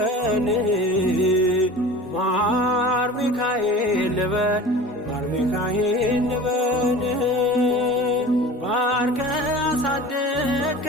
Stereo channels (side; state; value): both; normal; correlation 0.38